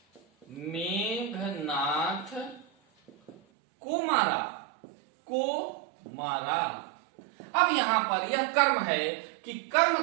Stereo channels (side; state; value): left; drops out; at 3.4 s